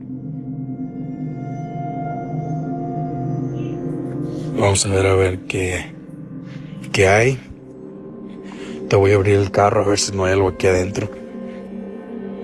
Vamos a ver qué hay. Te voy a abrir el carro a ver si no hay algo aquí adentro.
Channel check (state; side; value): identical; both; correlation 1.00